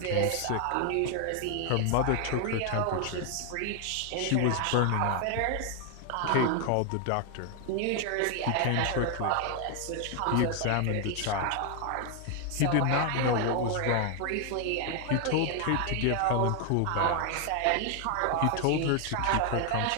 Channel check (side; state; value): both; different; correlation 0.00